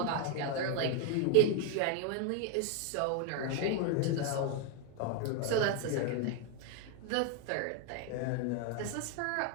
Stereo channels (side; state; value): both; different; correlation 0.01